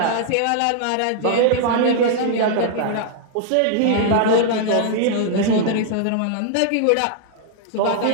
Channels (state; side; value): different; both; correlation -0.01